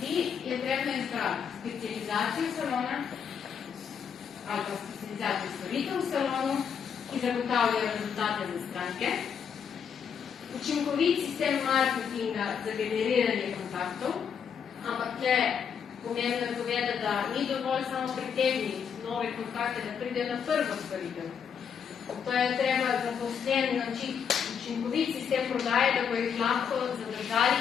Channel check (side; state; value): right; quieter; 7.2 dB